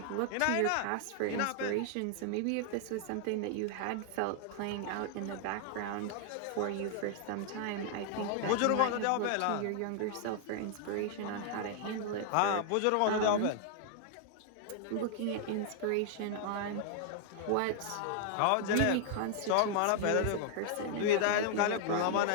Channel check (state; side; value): different; both; correlation 0.00